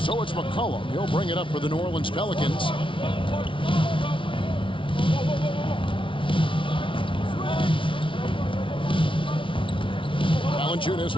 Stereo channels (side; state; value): right; late; 0.25 ms